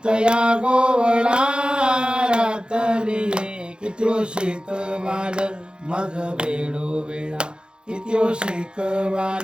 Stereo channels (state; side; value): late; left; 0.049 ms